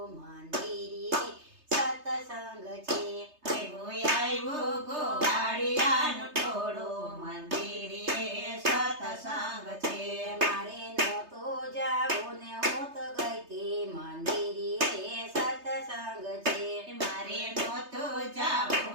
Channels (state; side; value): late; left; 3.3 ms